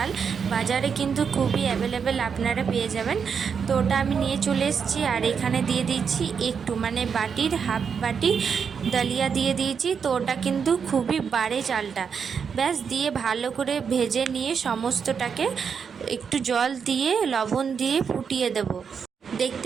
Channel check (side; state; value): left; quieter; 6.5 dB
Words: বাজারে কিন্তু খুবই অ্যাভেলেবেল, আপনারা পেয়ে যাবেন। তো ওটা আমি নিয়ে চলে এসেছি। আর এখানে দিয়ে দিচ্ছি একটু, মানে বাটির হাফ বাটি দালিয়া দিয়ে দিয়েছি। তো ওটা কিন্তু খুবই বাড়ে চালটা। ব্যাস দিয়ে ভালো করে ভেজে নিয়ে সমস্তটাকে একটু জল দিয়ে লবণ দিয়ে ফুটিয়ে দেব।